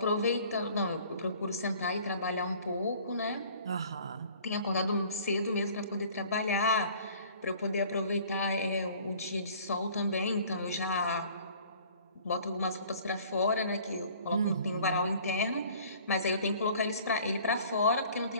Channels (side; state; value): both; inverted; correlation -0.51